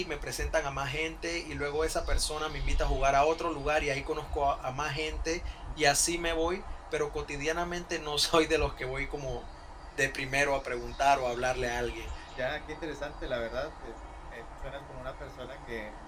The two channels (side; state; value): both; identical; correlation 1.00